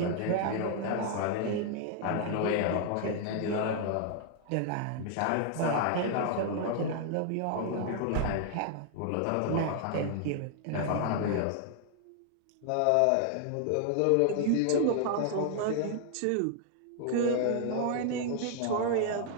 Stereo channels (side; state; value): both; different; correlation 0.00